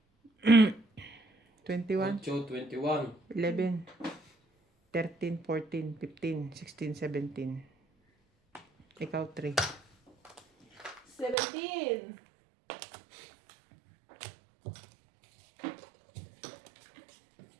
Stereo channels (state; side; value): drops out; left; at 11.4 s